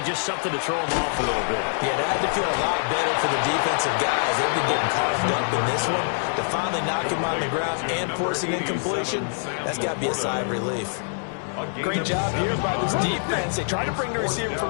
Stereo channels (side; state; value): right; silent; 62 dB below the other